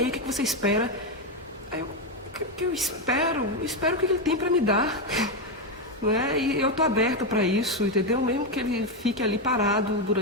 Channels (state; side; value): normal; both; correlation 0.07